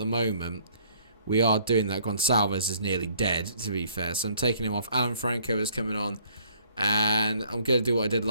moment, we are doing that. Gonçalves is nearly dead, to be fair, so I'm taking him off. Alan Franco is coming on. And I'm going to do what I did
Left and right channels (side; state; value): both; inverted; correlation -0.61